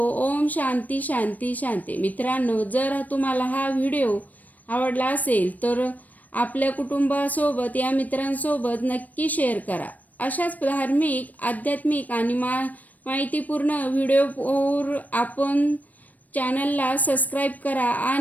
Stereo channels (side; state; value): right; late; 0.078 ms